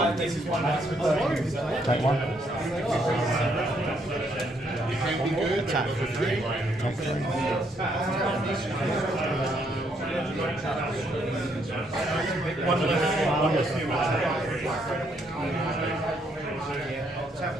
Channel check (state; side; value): normal; both; correlation 0.72